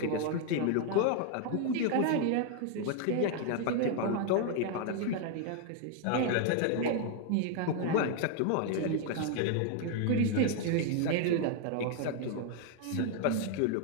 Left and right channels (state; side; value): different; both; correlation 0.00